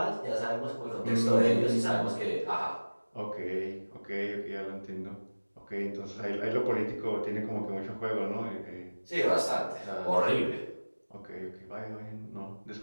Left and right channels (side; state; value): both; inverted; correlation -1.00